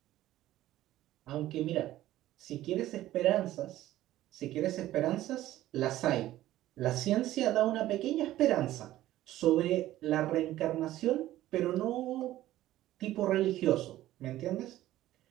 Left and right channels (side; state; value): left; quieter; 14.6 dB